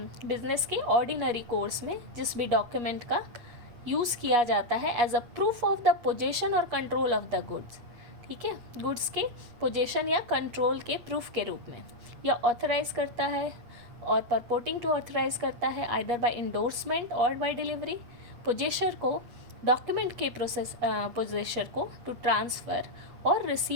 कोर्स में जिस भी डॉक्यूमेंट का यूज़ किया जाता है as a proof of the possession और कंट्रोल ऑफ द गुड्स. ठीक है, गुड्स के पोजेशन या कंट्रोल के प्रूफ के रूप में, या ऑथराइज करता है और परपोर्टिंग टू ऑथराइज करता है आइदर बाय इंडोर्समेंट और बाय डिलीवरी पोजेशर को, डॉक्यूमेंट के पोजेशर को टू ट्रांसफ़र और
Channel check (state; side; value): late; left; 8.4 ms